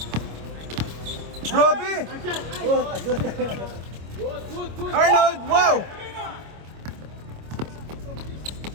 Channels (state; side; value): late; left; 25 ms